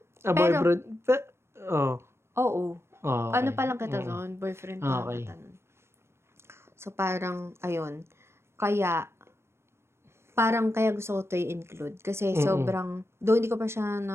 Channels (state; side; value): late; left; 0.12 ms